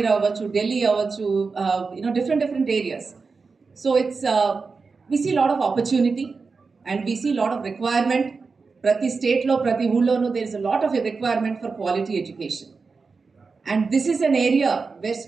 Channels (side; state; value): left; quieter; 4.6 dB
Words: అవ్వచ్చు, ఢిల్లీ అవ్వచ్చు, different areas. So it's we see lot of opportunity and we see lot of requirement. ప్రతి స్టేట్లో, ప్రతి ఊళ్ళోనూ there is a lot of requirement for quality education. And this is an area where